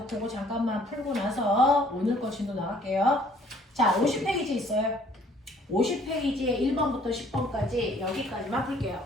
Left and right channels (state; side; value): normal; both; correlation 0.59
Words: 그거 잠깐만 풀고 나서 오늘 거 진도 나갈게요. 자, 50페이지 있어요. 50페이지에 1번부터 10번까지 여기까지만